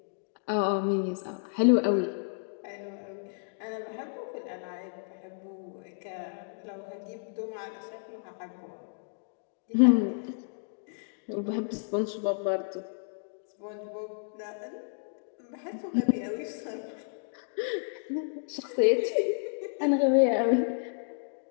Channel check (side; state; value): right; silent; digital silence